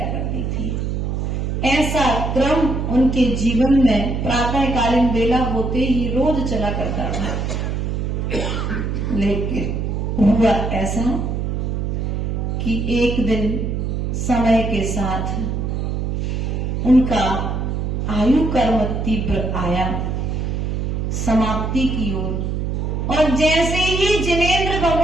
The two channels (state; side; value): noise; right; hum, 1 dB below the sound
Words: करती थी। ऐसा क्रम उनके जीवन में प्रातःकालीन बेला होते ही रोज चला करता था। लेकिन हुआ ऐसा कि एक दिन समय के साथ उनका आयु कर्म तीव्र आया समाप्ति की ओर, और जैसे ही जिनेंद्र